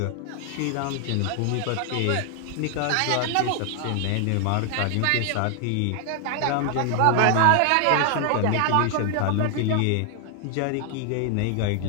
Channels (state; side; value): different; both; correlation 0.00